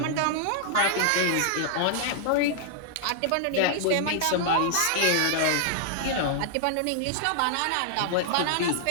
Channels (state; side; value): different; both; correlation 0.00